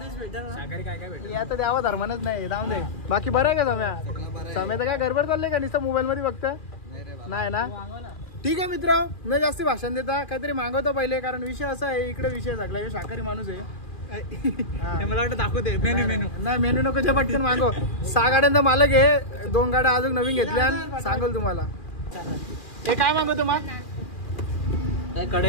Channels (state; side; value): late; right; 2.4 ms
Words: आता द्यावा धर्मानच नाही. जाऊन दे. बाकी बरं आहे का सम्या? सम्या तर काय गडबड चाललंय का? नुसतं मोबाईल मध्ये बघता नाही ना. ठीक आहे मित्र. न जास्ती भाषण देता काहीतरी मागवतो पहिले. कारण विषय असा आहे इकडे विषय सगळा. हे शाकाहारी माणूस आहे. मला वाटतं दाखवते मेनू. नाही मेनू नको. जे पटकन मागव. 6 गाड्यांचा मालक आहे. 2 गाड्या अजून नवीन घेतल्या. सांगल तुम्हाला. हे काय मागवतो मग?